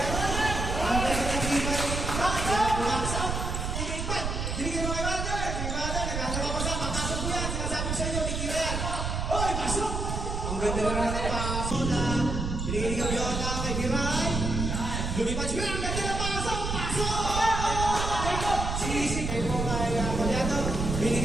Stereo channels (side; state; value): right; noise; rumble, 2 dB below the sound